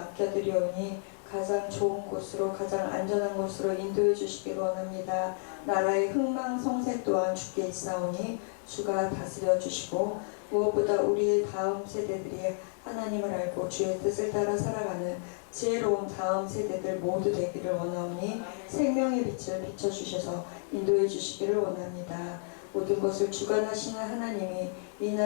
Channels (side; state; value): right; silent; digital silence